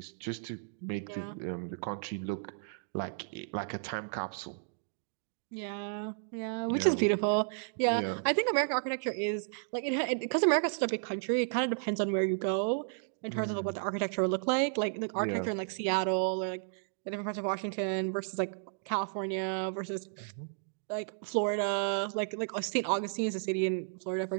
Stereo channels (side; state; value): left; silent; digital silence